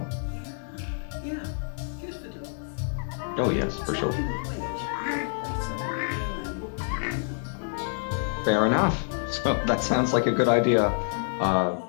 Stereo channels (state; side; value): silent; right; 60 dB below the other